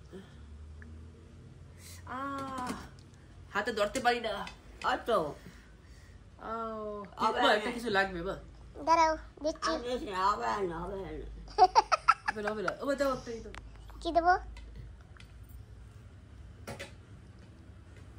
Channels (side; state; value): both; identical; correlation 1.00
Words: হাতে ধরতে পারি না অত একটা কিছু লাগবে বা দাঁড়াও দিচ্ছি হবে না হবে না ও দাও এই তো কি দেবো